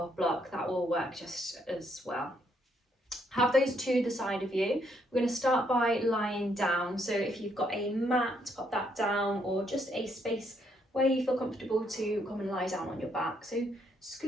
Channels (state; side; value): normal; both; correlation 0.73